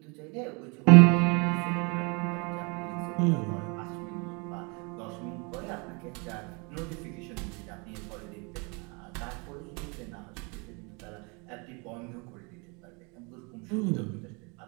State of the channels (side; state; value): left; quieter; 31.3 dB